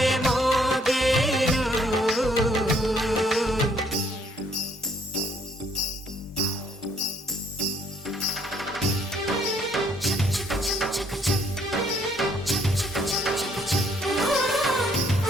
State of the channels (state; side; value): normal; both; correlation 0.66